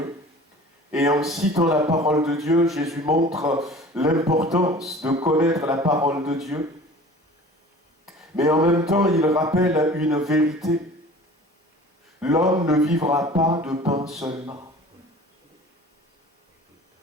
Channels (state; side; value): normal; both; correlation 0.43